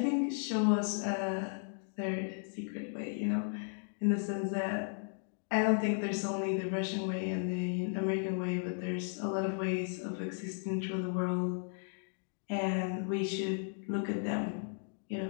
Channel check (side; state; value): right; silent; 54 dB below the other